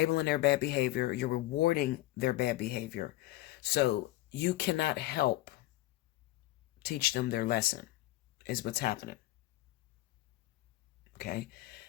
their bad behavior. You're rewarding their bad behavior. So you cannot help teach them their lesson, is what's happening. Okay?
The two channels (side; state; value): right; quieter; 17.0 dB